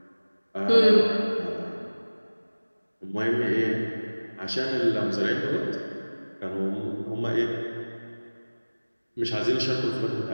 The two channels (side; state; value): both; inverted; correlation -1.00